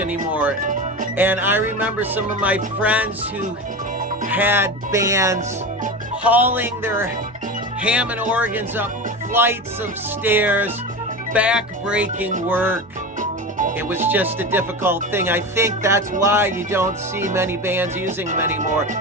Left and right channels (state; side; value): normal; both; correlation 0.25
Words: And I remember some of my friends who had bands hauling their Hammond organs up flights of stairs, back-breaking work. It was just a difficult thing. I think that's why you don't see many bands using them anymore.